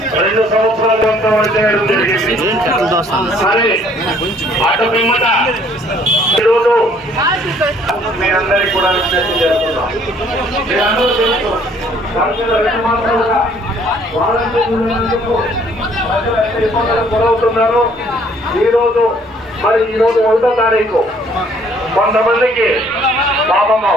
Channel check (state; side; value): normal; both; correlation 0.60